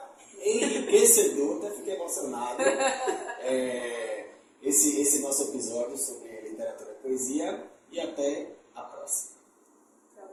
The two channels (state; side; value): identical; both; correlation 1.00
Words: até fiquei emocionado, esse nosso episódio sobre literatura e poesia, e até